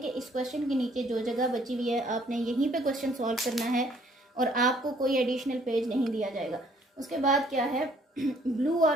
कि इस क्वेश्चन के नीचे जो जगह बची हुई है आपने यहीं पे क्वेश्चन सॉल्व करना है और आपको कोई एडिशनल पेज नहीं दिया जाएगा। उसके बाद क्या है, ब्लू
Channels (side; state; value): both; normal; correlation 0.62